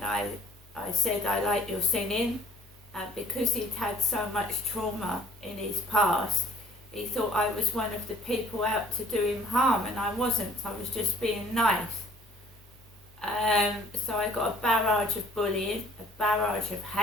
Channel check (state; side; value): normal; both; correlation 0.55